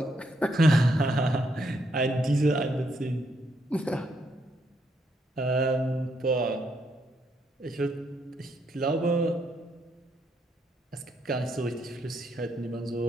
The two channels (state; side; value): normal; both; correlation 0.76